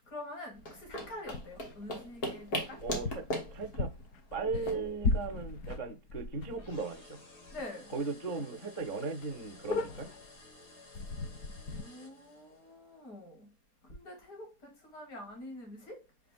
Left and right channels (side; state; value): right; late; 4.3 ms